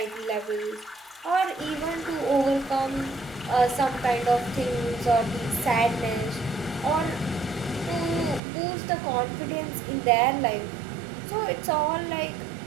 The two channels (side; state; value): left; drops out; at 8.4 s